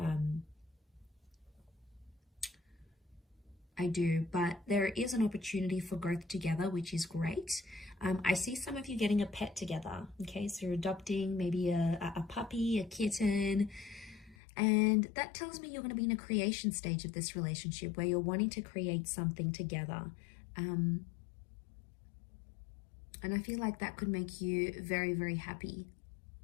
I do, but there is an opportunity for growth together, which is great. I see some of you getting a pet together. Okay, so you're adopting maybe a puppy, a kitten, and that tells me you're going to be in a creation stage of this relationship where you're wanting to create something together. And I feel like that could make you very, very happy.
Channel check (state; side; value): drops out; right; at 14.4 s